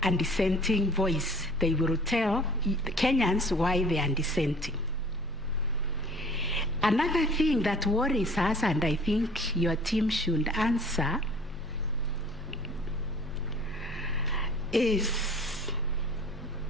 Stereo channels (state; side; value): normal; both; correlation 0.49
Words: a dissenting voice. They will tell Kenyans why they are dissenting. Another thing that worries us, and I think your team should answer, is